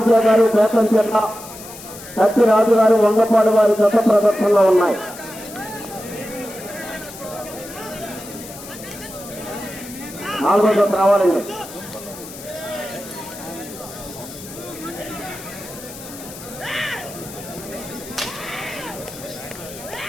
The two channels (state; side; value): noise; left; hiss, 15 dB below the sound